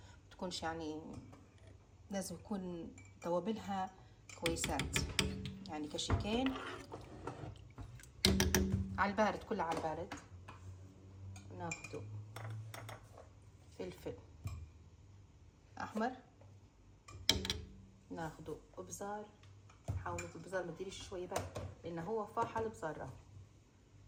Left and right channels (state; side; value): identical; both; correlation 1.00